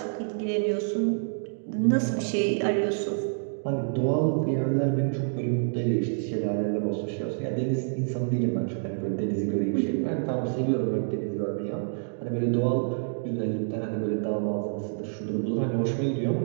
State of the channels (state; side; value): silent; left; digital silence